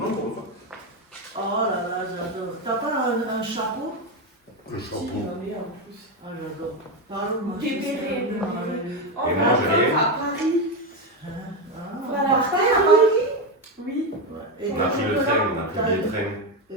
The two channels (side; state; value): both; normal; correlation 0.11